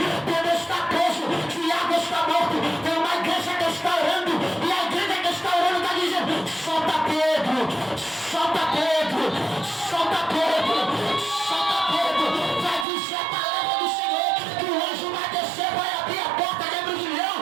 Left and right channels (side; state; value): left; drops out; at 12.9 s